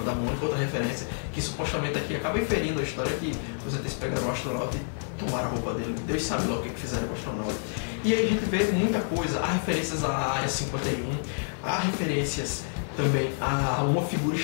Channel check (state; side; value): silent; right; 59 dB below the other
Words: da Mônica, outra referência, que supostamente aqui acaba inferindo a história que os ETs pegaram o astronauta e tomaram a roupa dele. Deus sabe lá o que fizeram com o astronauta. E aí a gente vê muita coisa, há referências à Área 51, há referências também a uma figura